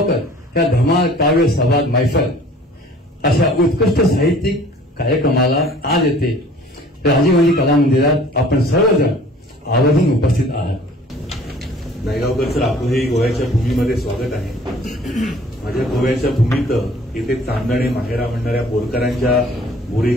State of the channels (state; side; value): normal; both; correlation 0.51